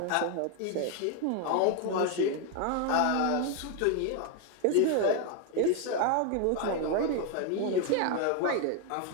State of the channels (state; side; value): different; both; correlation 0.01